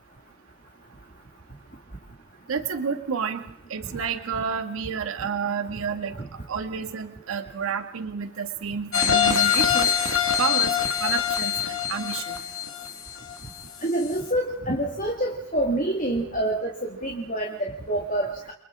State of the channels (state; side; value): normal; both; correlation 0.03